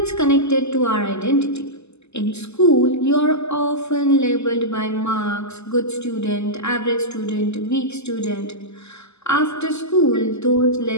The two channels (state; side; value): late; right; 0.80 ms